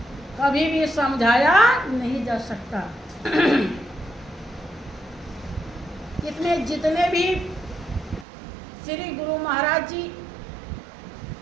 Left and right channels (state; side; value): drops out; left; at 8.2 s